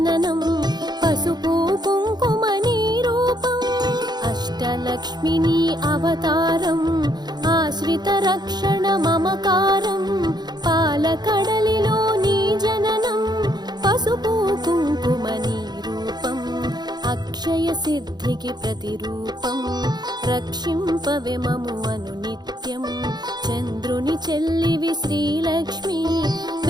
పసుపు కుంకుమ నీ రూపం అష్టలక్ష్మిని అవతారం ఆశ్రిత రక్షణ మమకారం పాలకడలిలో నీ జననం పసుపు కుంకుమ నీ రూపం అక్షయ సిద్ధికి ప్రతిరూపం రక్షింపవే మము అనునిత్యం చంద్రుని చెల్లివి శ్రీలక్ష్మి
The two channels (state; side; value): late; left; 0.20 ms